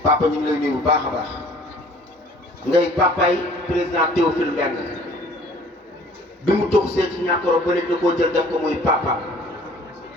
papa ñu ngi lay nuyu bu baax a baax ngay papay président Théophile Mbengue bi mu tox see ci ñàkkoro ba léegi da koo jël def ko muy papa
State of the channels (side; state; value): both; normal; correlation 0.52